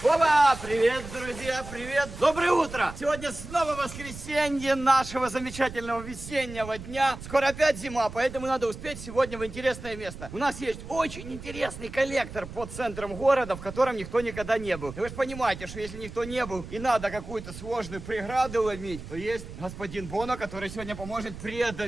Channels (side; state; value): right; noise; rumble, 12 dB below the sound